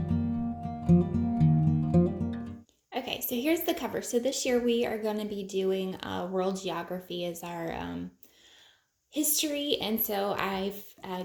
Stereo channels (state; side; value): identical; both; correlation 1.00